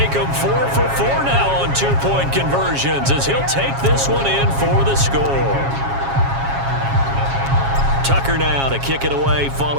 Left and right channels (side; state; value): left; late; 7.3 ms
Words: them 4 for 4 now on 2-point conversions as he'll take this one in for the score. Tucker now to kick it away